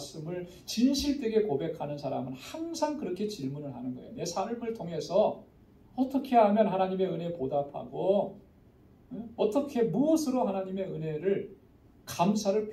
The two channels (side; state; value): both; identical; correlation 1.00